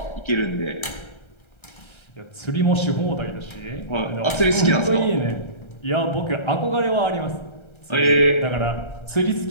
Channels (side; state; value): right; late; 1.3 ms